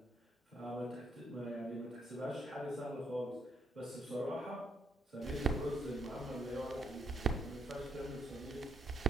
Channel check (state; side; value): normal; both; correlation 0.73